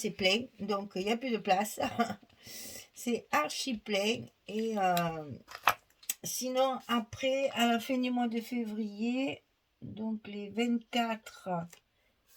plein, donc il n'y a plus de place. C'est archi plein. Et sinon, après, à la fin du mois de février, donc les 24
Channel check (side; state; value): both; identical; correlation 1.00